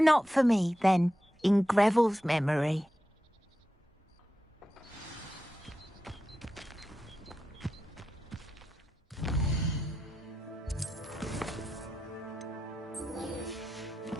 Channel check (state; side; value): normal; both; correlation 0.90